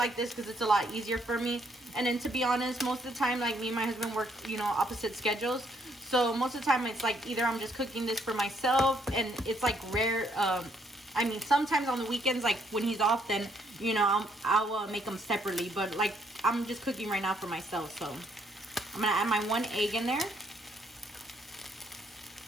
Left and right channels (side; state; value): both; normal; correlation 0.70